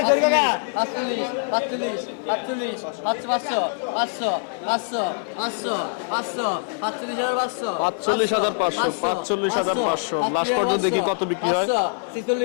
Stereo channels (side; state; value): right; silent; digital silence